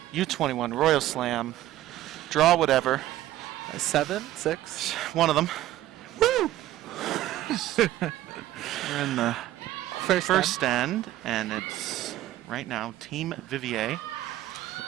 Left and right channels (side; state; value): left; quieter; 14.5 dB